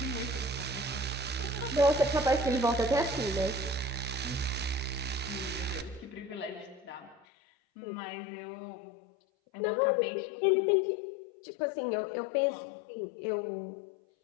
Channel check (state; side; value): drops out; right; at 7.2 s